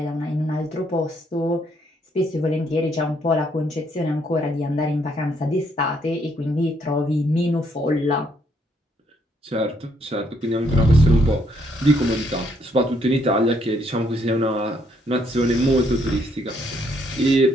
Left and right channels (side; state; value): both; normal; correlation 0.71